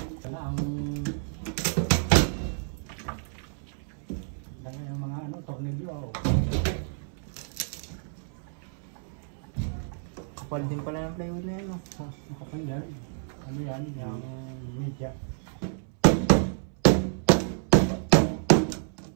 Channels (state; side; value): silent; left; 59 dB below the other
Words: Sana ang dami ng mga ano, tornilyo. Kapal din pala ng plywood na yan, no? Nakapal yan. Ano yan? Yung media.